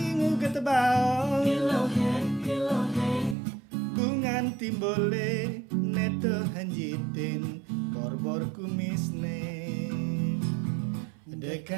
ngugut baong bungan timbole neto hanjitin borbor kumisne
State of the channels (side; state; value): left; drops out; at 3.4 s